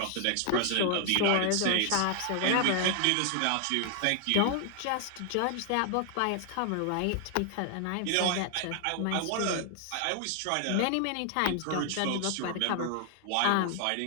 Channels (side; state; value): both; different; correlation 0.00